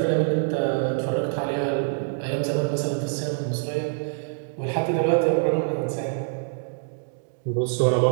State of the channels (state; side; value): silent; left; digital silence